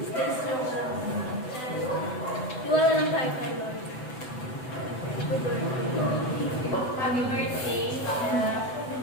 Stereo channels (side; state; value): right; late; 7.9 ms